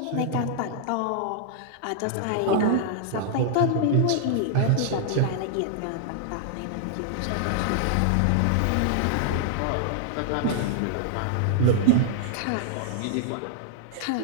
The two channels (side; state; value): both; different; correlation -0.01